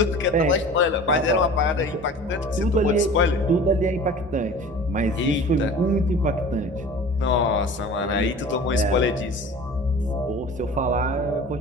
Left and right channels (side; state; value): both; normal; correlation 0.40